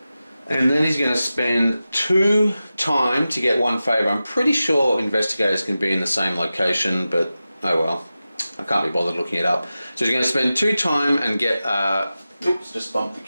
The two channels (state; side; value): inverted; both; correlation -0.94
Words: And then he's going to spend 2 time to get 1 favour. I'm pretty sure investigators can be in the same location, but oh well. I can't be bothered looking it up. So he's going to spend 2 time and get... oops, just bumped the